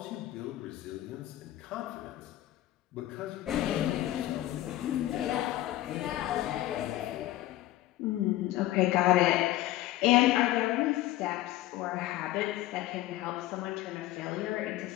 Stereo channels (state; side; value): quieter; right; 15.5 dB